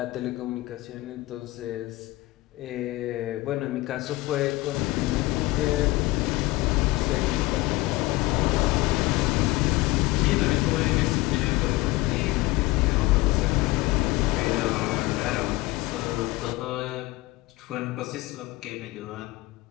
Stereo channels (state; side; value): quieter; right; 19.8 dB